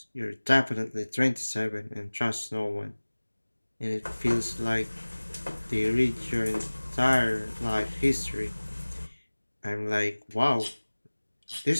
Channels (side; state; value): both; inverted; correlation -1.00